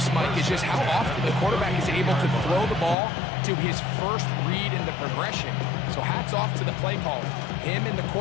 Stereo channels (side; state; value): right; drops out; at 3.0 s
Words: Mike, is just how often the quarterback is able to throw the ball to his first read in the progression. So hats off to the play caller. Him and the